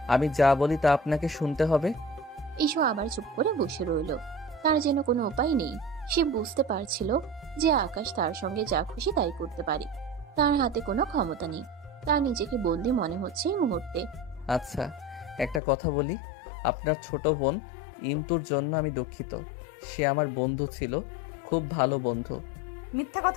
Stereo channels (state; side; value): drops out; right; at 15.6 s